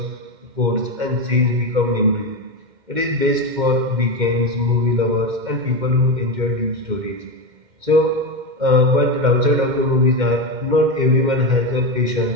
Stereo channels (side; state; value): left; late; 2.1 ms